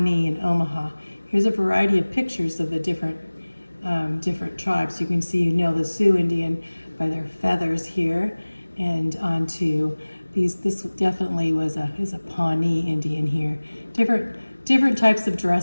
and Omaha. Here's a variety of pictures of the different tribes. You can see, the Sioux Indian by their feathers here, and onto these. This definitely is a Pawnee Indian here. Different types of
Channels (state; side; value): inverted; both; correlation -1.00